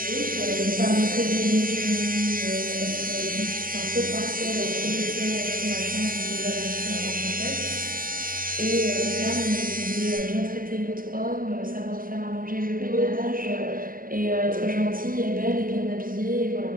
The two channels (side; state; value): left; late; 0.41 ms